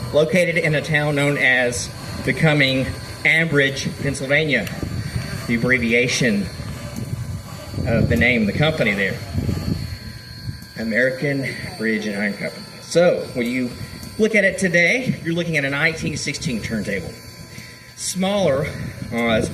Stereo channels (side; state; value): both; identical; correlation 1.00